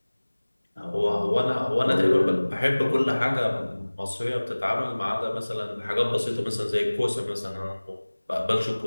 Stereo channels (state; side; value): inverted; both; correlation -1.00